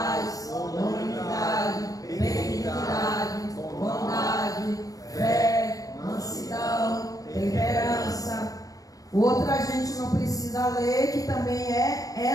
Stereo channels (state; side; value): late; right; 0.17 ms